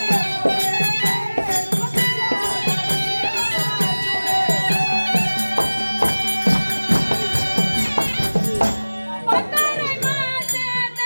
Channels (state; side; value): inverted; both; correlation -1.00